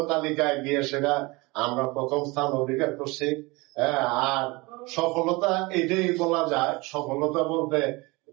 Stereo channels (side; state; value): left; quieter; 24.5 dB